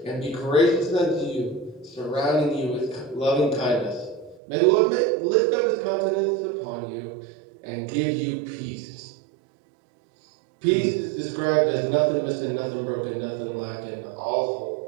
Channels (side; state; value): left; drops out; at 4.4 s